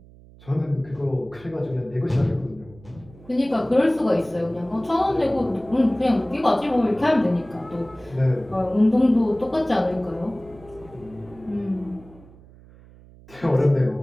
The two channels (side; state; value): right; noise; hum, 23 dB below the sound